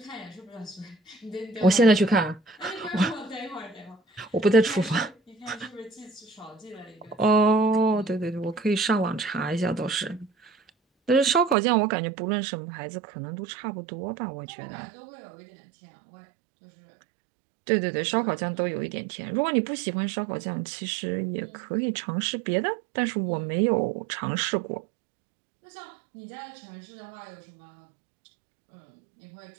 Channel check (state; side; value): drops out; left; at 11.6 s